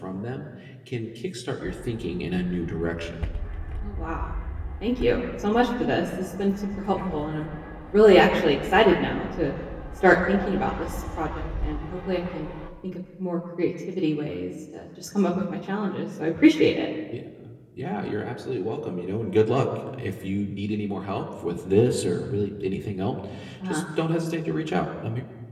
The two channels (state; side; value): identical; both; correlation 1.00